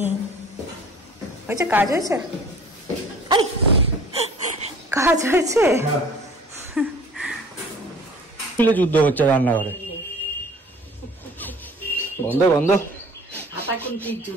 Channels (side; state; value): both; normal; correlation 0.49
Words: হয়েছে, কাজ হয়েছে, কাজ হয়েছে। যুদ্ধ হচ্ছে রান্নাঘরে, বন্ধ বন্ধ।